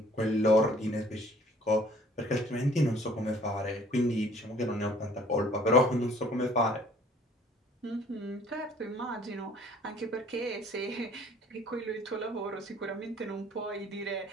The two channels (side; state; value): both; normal; correlation 0.55